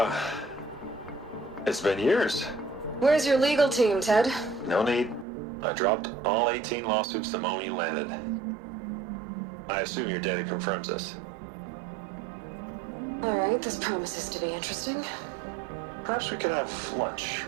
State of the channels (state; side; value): drops out; left; at 5.2 s